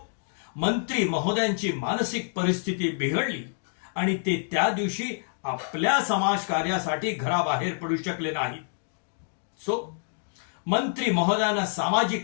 मंत्री महोदयांची मानसिक परिस्थिती बिघडली, आणि ते त्या दिवशी आपल्या समाजकार्यासाठी घराबाहेर पडू शकले नाहीत. मंत्री महोदयांना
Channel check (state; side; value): silent; right; digital silence